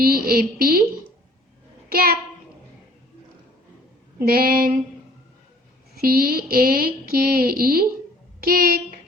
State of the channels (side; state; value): both; normal; correlation 0.55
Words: cap. Then CAKE, cake.